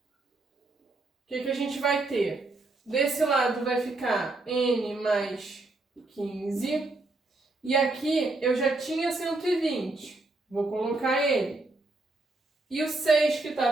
o que a gente vai ter? Desse lado vai ficar n mais 15. E aqui eu já tinha 120. Vou colocar ele. E o 6 que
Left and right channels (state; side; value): quieter; left; 3.1 dB